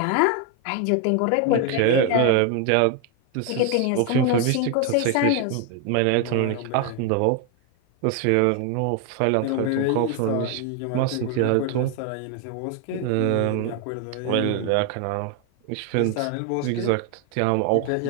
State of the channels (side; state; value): both; different; correlation 0.01